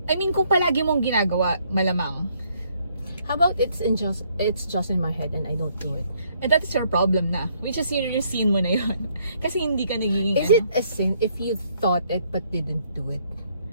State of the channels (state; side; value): inverted; both; correlation -0.68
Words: I mean, kung palagi mong ginagawa, malamang. How about it's just in my head and I don't do it? And that is your problem na. Which is yung scene mo na yun. Kasi hindi ka nagiging Is it a sin if you thought it but didn't do it?